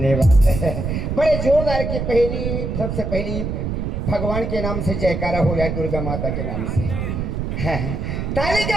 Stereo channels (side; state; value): right; noise; rumble, 2 dB below the sound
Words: बड़े जोरदार के पहली सबसे पहली भगवान के नाम से जयकारा हो या दुर्गा माता के नाम से ताली